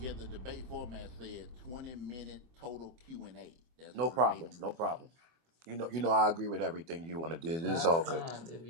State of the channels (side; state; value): left; late; 24 ms